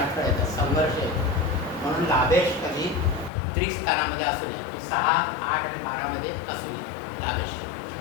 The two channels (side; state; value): right; drops out; at 3.3 s